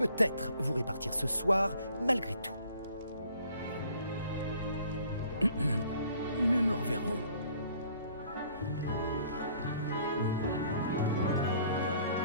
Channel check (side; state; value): both; inverted; correlation -0.58